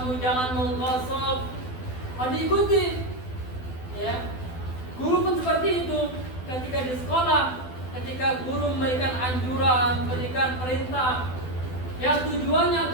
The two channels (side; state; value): right; late; 12 ms